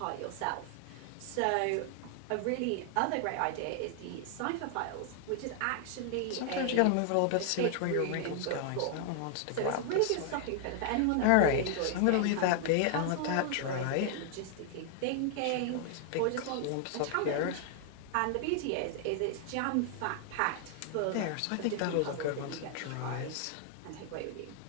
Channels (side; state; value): both; different; correlation 0.00